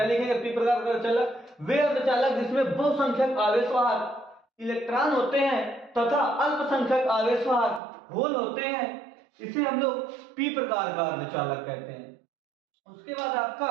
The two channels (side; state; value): left; drops out; at 7.8 s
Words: लिखेंगे, पी प्रकार का अर्धचालक, वे अर्धचालक जिसमें बहुसंख्यक आवेशवाहक इलेक्ट्रॉन होते हैं तथा अल्पसंख्यक आवेशवाहक होल होते हैं, इसे हम लोग पी प्रकार का अर्धचालक कहते हैं। उसके बाद आपका